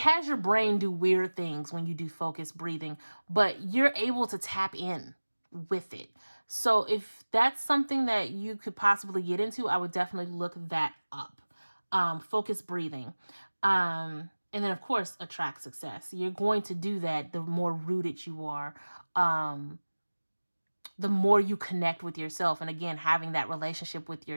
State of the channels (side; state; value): both; inverted; correlation -1.00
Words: your brain do weird things when you do focused breathing, but you're able to tap in with it. So if that's something that you could possibly get into, I would definitely look that up. Focused breathing. And then, of course, attract success. You're going to do that the more rooted you are, the more you connect with yourself. And again, having that relationship with